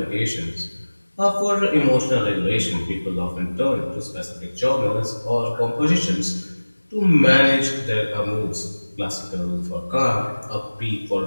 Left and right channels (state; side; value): inverted; both; correlation -1.00